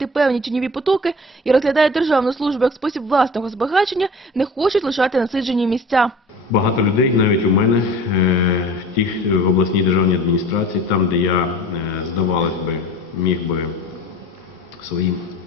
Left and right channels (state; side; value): normal; both; correlation 0.41